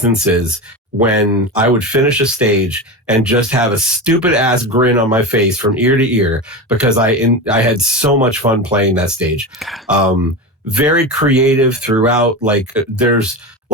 when I would finish a stage and just have a stupid ass grin on my face from ear to ear because I had so much fun playing that stage. Very creative throughout. Like there's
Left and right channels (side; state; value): both; normal; correlation 0.22